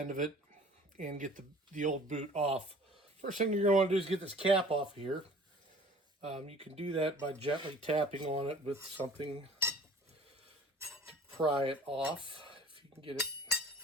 of it and get the old boot off. First thing you're going to want to do is get this cap off here. You can do that by gently tapping on it with something to pry it off, if you can get it.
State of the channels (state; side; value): normal; both; correlation 0.48